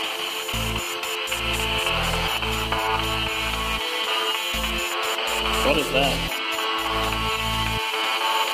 What is that?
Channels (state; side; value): identical; both; correlation 1.00